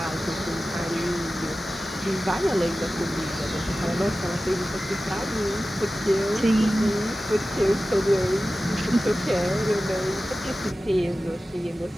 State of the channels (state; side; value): normal; both; correlation 0.95